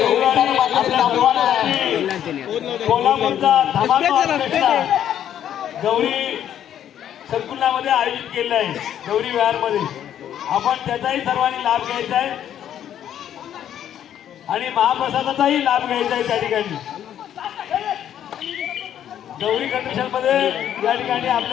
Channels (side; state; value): right; quieter; 10.3 dB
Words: कोल्हापूरचा धमाका गौरी संकुलामध्ये आयोजित केलेला आहे. गौरी विहारमध्ये आपण त्याचाही सर्वांनी लाभ घ्यायचा आहे आणि महाप्रसादाचाही लाभ घ्यायचा आहे. त्या ठिकाणी गौरी कंडिशन मध्ये या ठिकाणी